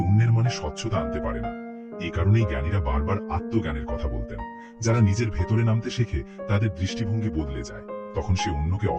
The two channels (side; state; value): both; identical; correlation 1.00